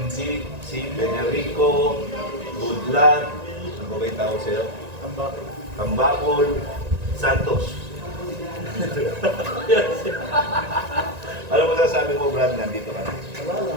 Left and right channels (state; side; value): late; left; 1.9 ms